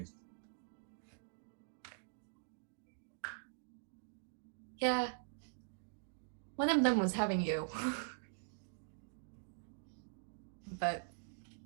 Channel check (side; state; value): left; silent; digital silence